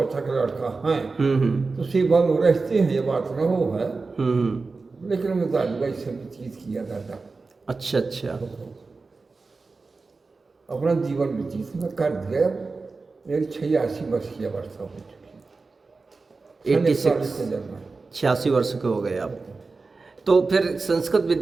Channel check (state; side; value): quieter; left; 4.0 dB